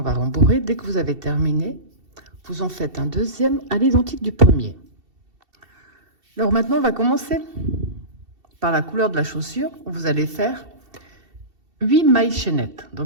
va rembourrer. Dès que vous avez terminé, vous en faites un deuxième à l'identique du premier. Alors maintenant, on va commencer par la couleur de la chaussure, où vous allez faire 8 mailles chaînettes.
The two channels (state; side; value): late; left; 2.7 ms